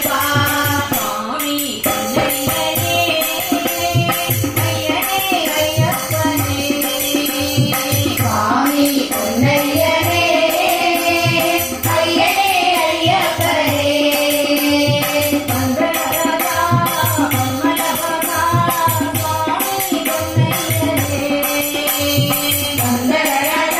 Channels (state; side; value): identical; both; correlation 1.00